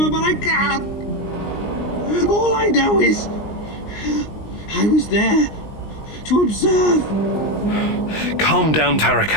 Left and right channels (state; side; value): late; right; 19 ms